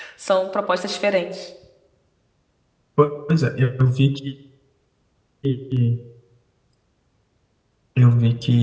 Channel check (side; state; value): both; identical; correlation 1.00